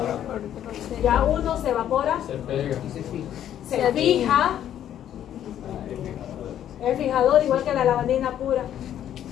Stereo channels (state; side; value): quieter; right; 10.7 dB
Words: Ya uno se evapora, Se pega. se fija. El fijador, igual que la lavandina pura.